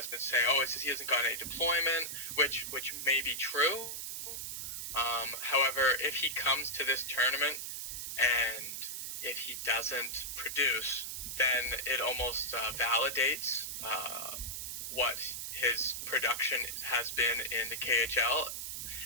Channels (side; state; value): right; noise; hiss, 5 dB below the sound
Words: been saying, "Oh, it's just he hasn't gotten any deployment," which may be true. However, if he comes to this tournament and if he doesn't produce, then it almost validates what his production has been in the KHL,